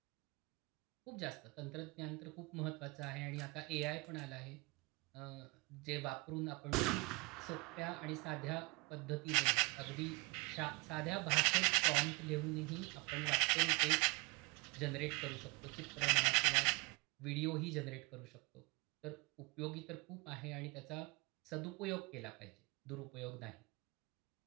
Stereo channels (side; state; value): left; quieter; 27.1 dB